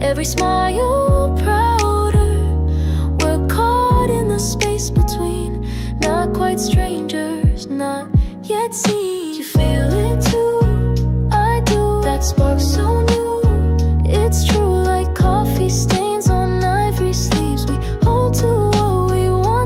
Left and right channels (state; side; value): identical; both; correlation 1.00